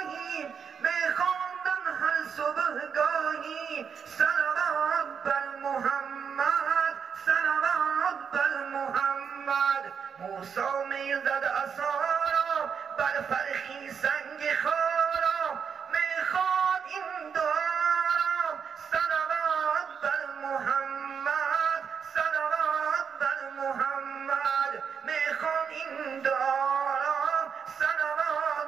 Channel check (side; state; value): left; quieter; 6.8 dB